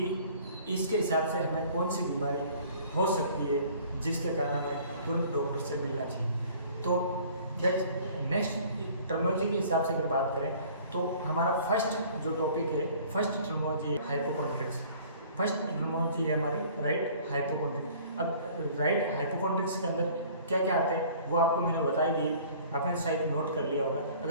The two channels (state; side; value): inverted; both; correlation -0.52